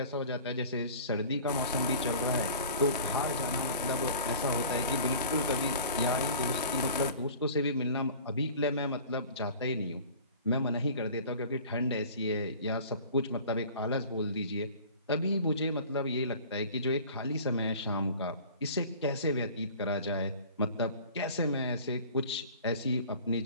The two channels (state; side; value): inverted; both; correlation -0.44